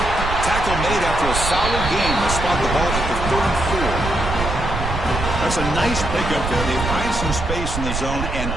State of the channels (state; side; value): noise; right; rumble, 4 dB below the sound